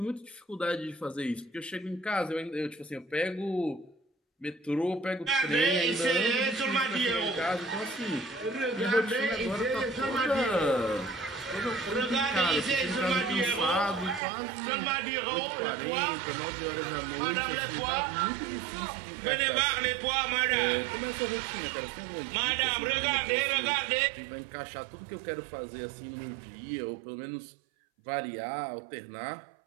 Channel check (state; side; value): drops out; left; at 14.2 s